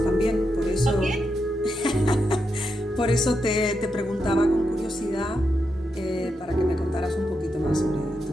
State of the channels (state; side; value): normal; both; correlation 0.85